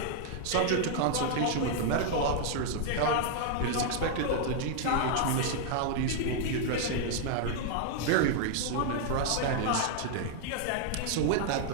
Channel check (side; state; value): both; different; correlation 0.00